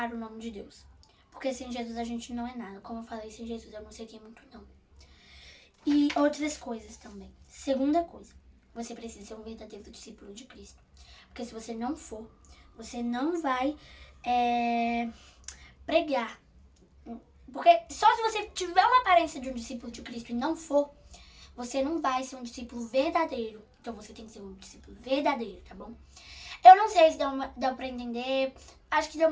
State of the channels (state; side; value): identical; both; correlation 1.00